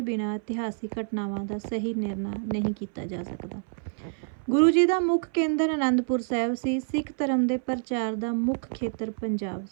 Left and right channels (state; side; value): silent; left; 60 dB below the other